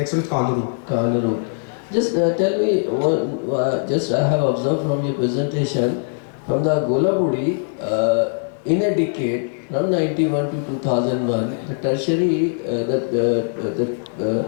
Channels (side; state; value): right; silent; digital silence